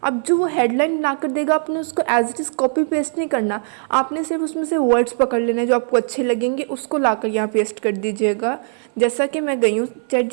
अब जो वो हेडलाइन बना कर देगा, आपने उसको as it is copy paste नहीं करना, आपने सिर्फ उसमें से वर्ड्स पकड़ लेने जो आपको अच्छे लगेंगे, उसको लाकर यहाँ पेस्ट कर दीजिएगा। जैसा कि मैं गई हूँ चैट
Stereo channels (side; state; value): left; silent; 59 dB below the other